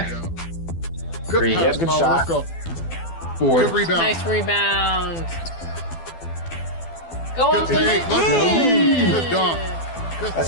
Good Green. pass, Good Power. shot. Let's go. Four. Good rebound. Nice rebound. Go on, Good take. Let's go. Good dunk. Good.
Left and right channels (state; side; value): late; right; 12 ms